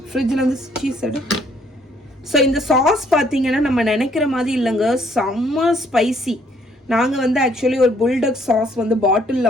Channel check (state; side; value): normal; both; correlation 0.65